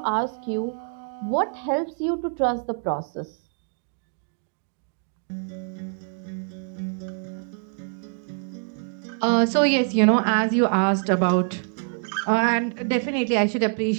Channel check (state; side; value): silent; left; 56 dB below the other